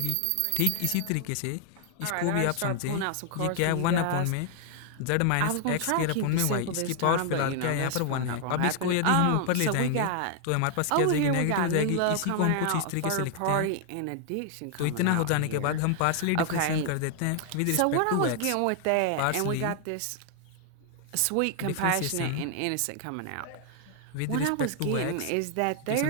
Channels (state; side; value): different; both; correlation 0.00